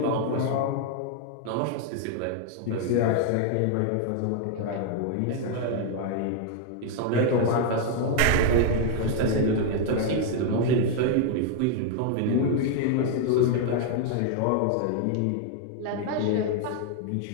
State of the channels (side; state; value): both; different; correlation 0.00